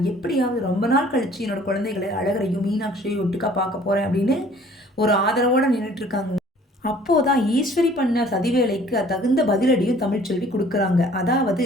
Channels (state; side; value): normal; both; correlation 0.54